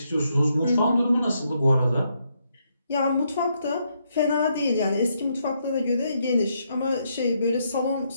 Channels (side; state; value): both; inverted; correlation -0.77